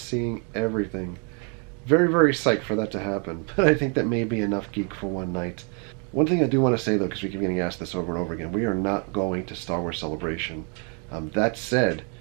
everything. Very, very psyched for that to happen. But I think that may be enough geek for one night. One thing I do want to say, though, because we keep getting asked this over and over again, we are not going to Star Wars Celebration. That said,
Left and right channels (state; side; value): quieter; left; 37.5 dB